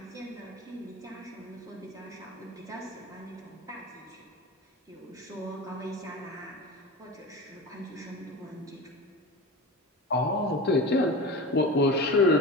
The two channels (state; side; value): normal; both; correlation 0.30